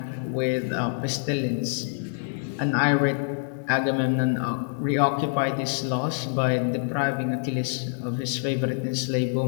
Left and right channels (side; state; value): right; silent; 61 dB below the other